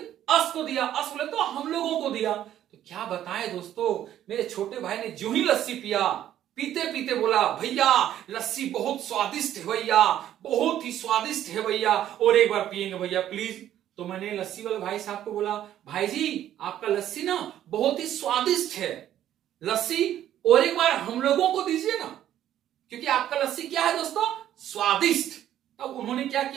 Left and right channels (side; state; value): left; quieter; 11.6 dB